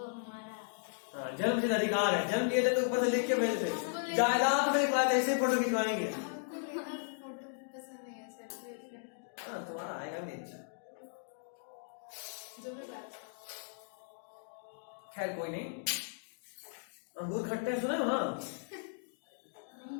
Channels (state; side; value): silent; right; digital silence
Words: हमारा। हाँ जन्मसिद्ध अधिकार है, जन्म लिए थे तो ऊपर से लिख के भेजते, जायदाद में लिखवाए ऐसे फोटो खिंचवाएंगे। हमको लेना फोटो पसंद नहीं है, सेल्फी। हाँ तुम्हारा आएगा भी अच्छा। जो भी बात। खैर कोई नहीं। अंगूर खट्टे सुने हो ना? नहीं